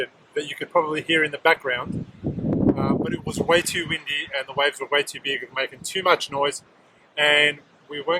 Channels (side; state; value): both; identical; correlation 1.00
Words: that you could probably hear in the background, but it was way too windy and the waves were way too big and making too much noise, and we